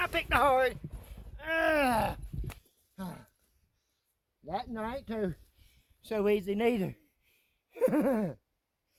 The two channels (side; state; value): both; identical; correlation 1.00